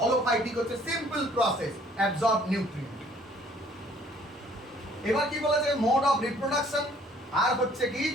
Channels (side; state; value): both; normal; correlation 0.59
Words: হলোফাইটিক হচ্ছে সিম্পল প্রসেস, অ্যাবজর্ব নিউট্রিয়েন্ট। এবার কি বলেছে, মোড অফ রিপ্রোডাকশন, আর হচ্ছে কি,